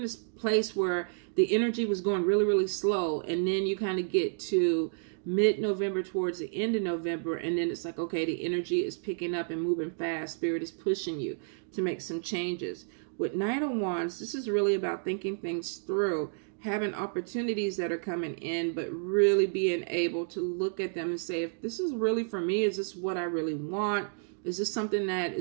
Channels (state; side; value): silent; left; digital silence